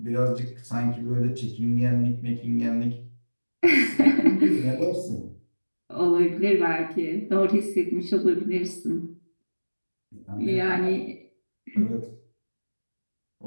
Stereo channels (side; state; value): both; inverted; correlation -1.00